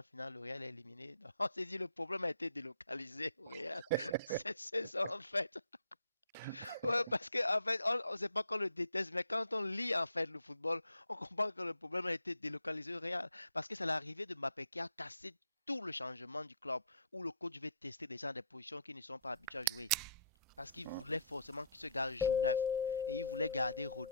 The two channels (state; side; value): inverted; both; correlation -0.60